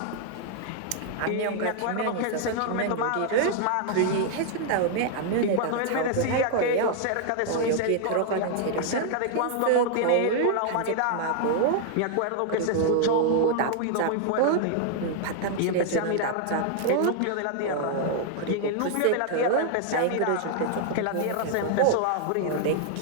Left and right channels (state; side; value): different; both; correlation 0.00